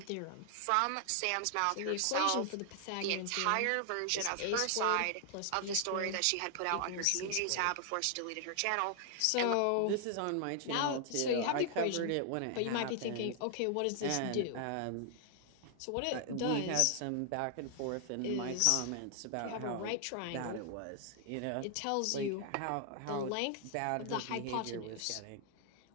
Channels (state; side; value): different; both; correlation 0.00